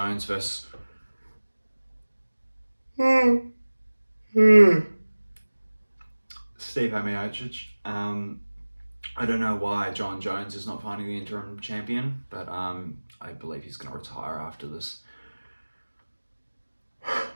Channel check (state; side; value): inverted; both; correlation -1.00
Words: versus... Stipe Miocic. I don't know why John Jones is not fighting the interim champion, but I believe he's going to retire after this.